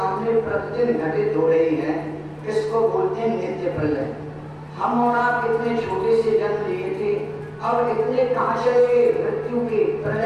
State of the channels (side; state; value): both; identical; correlation 1.00